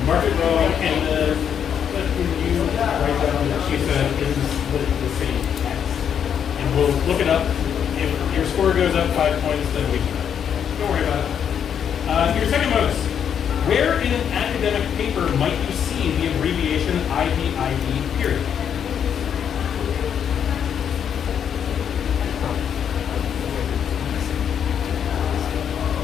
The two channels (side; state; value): right; quieter; 8.3 dB